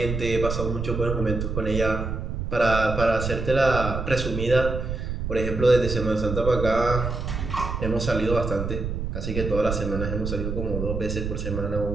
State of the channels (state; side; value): noise; right; rumble, 4 dB below the sound